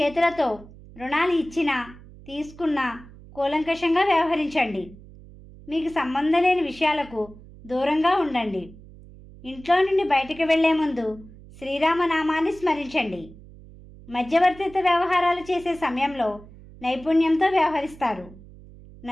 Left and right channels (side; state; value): right; noise; hum, 20 dB below the sound